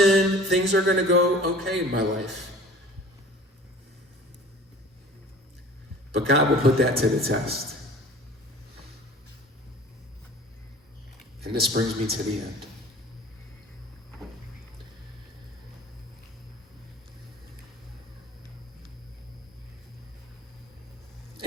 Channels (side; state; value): both; normal; correlation 0.45